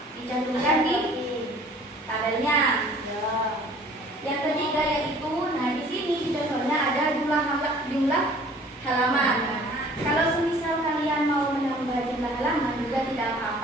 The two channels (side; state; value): both; normal; correlation 0.52